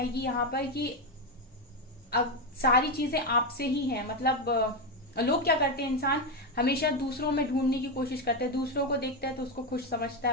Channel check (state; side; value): normal; both; correlation 0.09